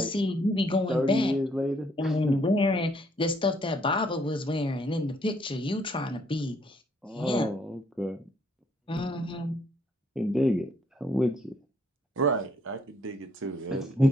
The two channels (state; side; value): normal; both; correlation 0.68